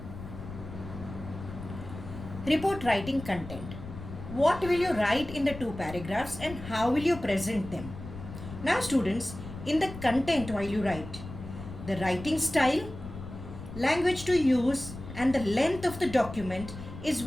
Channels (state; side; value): noise; left; rumble, 12 dB below the sound